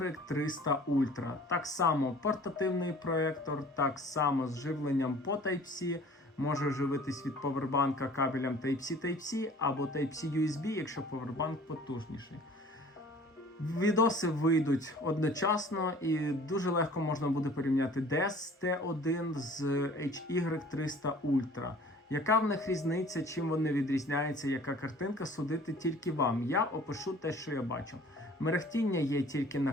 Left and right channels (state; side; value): normal; both; correlation 0.49